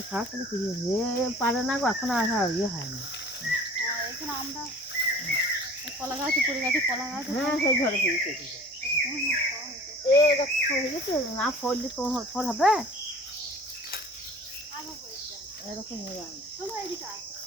খাওয়া তাহলে ফিরিয়ে পারে না গো, এখন আর ইয়ে হয় না। এখানে আমরা কলা গাছ পড়ে গেছে, কলা গাছ। হ্যাঁ, সেই ঝড়ে ফিরেছে হয়ে গেছে, না ফললে তো ফল হবে এরকম হয়ে যায়।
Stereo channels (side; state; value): both; normal; correlation 0.46